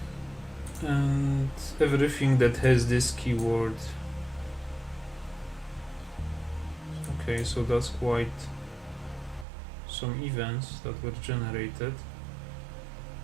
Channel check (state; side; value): drops out; left; at 9.5 s